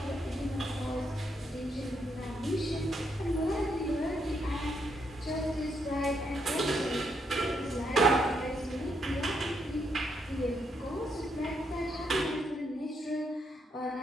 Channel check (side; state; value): both; normal; correlation 0.77